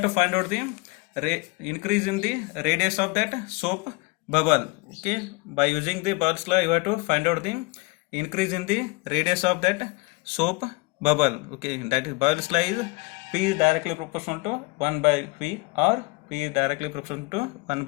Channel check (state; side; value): quieter; right; 24.8 dB